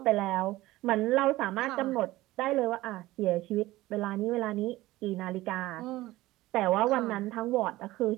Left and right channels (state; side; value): quieter; left; 17.7 dB